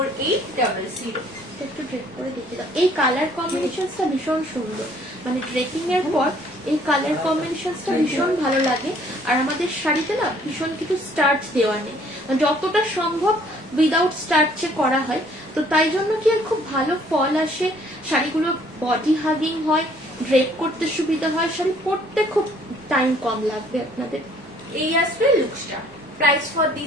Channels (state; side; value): normal; both; correlation 0.60